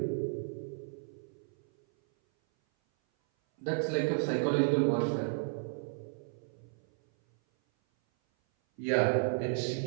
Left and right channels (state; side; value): silent; left; 56 dB below the other